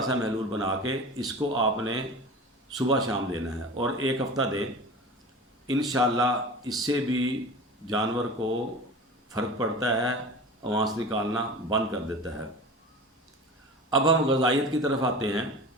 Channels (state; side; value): normal; both; correlation 0.35